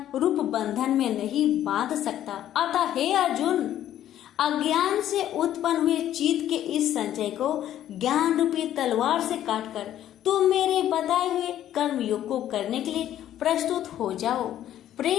रूप बंधन में नहीं बांध सकता। अतः हे अर्जुन, अज्ञान से उत्पन्न हुए चित्त के इस संचय को ज्ञान रूपी तलवार से काटकर तुम मेरे बताए हुए कर्म योग को करने के लिए प्रस्तुत हो जाओ।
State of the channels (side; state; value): right; quieter; 11.8 dB